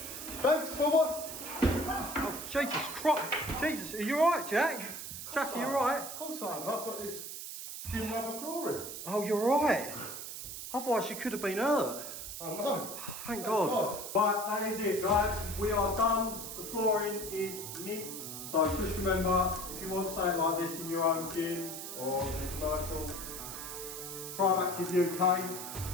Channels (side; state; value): right; noise; hiss, 8 dB below the sound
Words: Thanks for what? Oh, Jesus Christ. Jesus, are you alright, Jack? Jack, are you alright? Of course I am. I've got this gym rubber flooring. Oh, you're right. Otherwise you could have been hurt. I know. Thank God. Right, that is it, guys. We are done. The flooring is mint. So just remember, if you want something like this in your own gym or in a commercial, Scribe Active